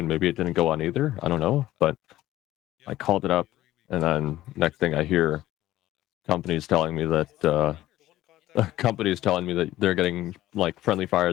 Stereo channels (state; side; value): quieter; right; 15.0 dB